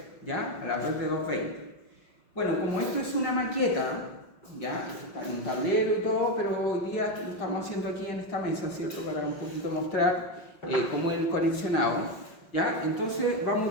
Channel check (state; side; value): late; right; 5.4 ms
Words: ¿ya? A la red de 220. Bueno, como esto es una maqueta, ya, está en un tablero y todo, pero hoy día lo estamos haciendo aquí en esta mesa, ¿cierto? Para un poquito mostrar cómo es el conexionado, ¿ya? Entonces vamos